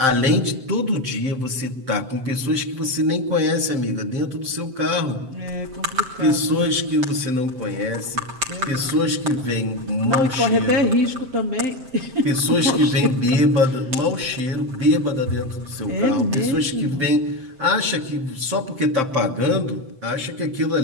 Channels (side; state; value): left; late; 7.6 ms